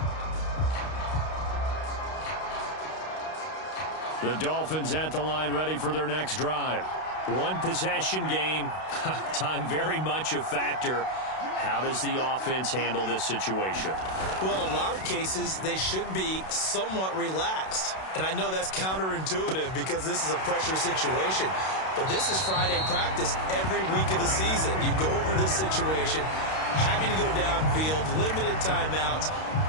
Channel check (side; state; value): right; late; 32 ms